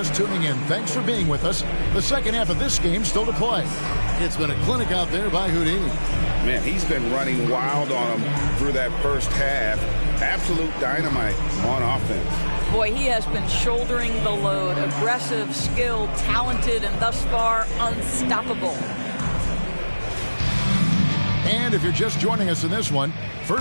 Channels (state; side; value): inverted; both; correlation -1.00